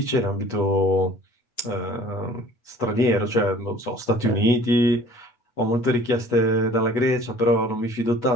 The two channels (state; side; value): late; right; 8.2 ms